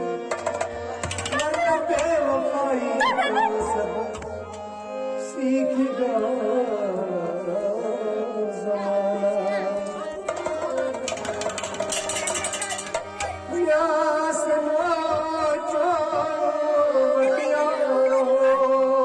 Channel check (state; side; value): identical; both; correlation 1.00